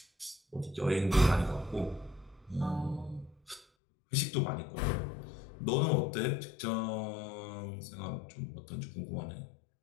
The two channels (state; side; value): drops out; right; at 3.7 s